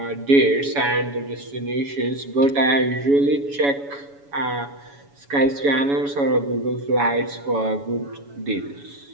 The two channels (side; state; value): left; late; 7.1 ms